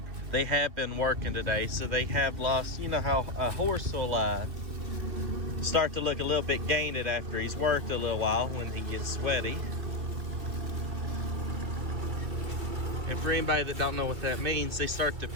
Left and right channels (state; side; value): late; left; 3.0 ms